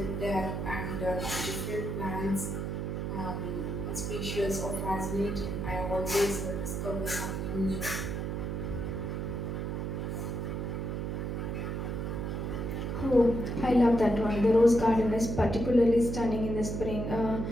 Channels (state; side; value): noise; right; hum, 2 dB below the sound